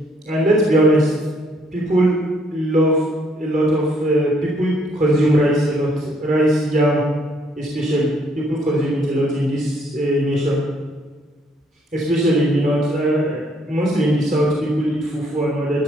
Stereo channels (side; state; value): both; normal; correlation 0.67